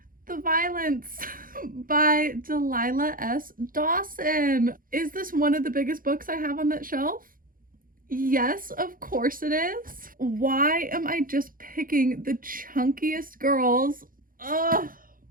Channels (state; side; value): late; left; 0.41 ms